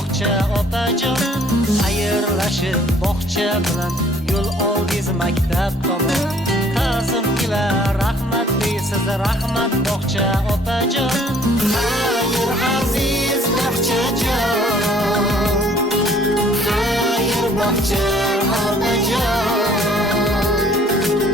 opajon. Xayrlashib bog'cha bilan yo'l oldiz maktab tomon. Kazim ila rahmat deysiz, rahmat bog'cha opajon. Xayr aziz bog'chajon, xayr bog'cha opajon.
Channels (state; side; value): normal; both; correlation 0.58